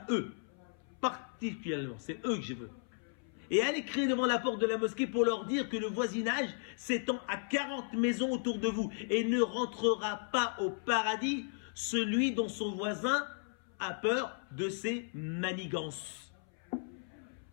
eux. Particulièrement, c'est eux que je veux. Et allez crier devant la porte de la mosquée pour leur dire que le voisinage s'étend à 40 maisons autour de vous et ne rentrera pas au paradis celui dont son voisin a peur de ses manigances.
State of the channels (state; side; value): silent; right; 54 dB below the other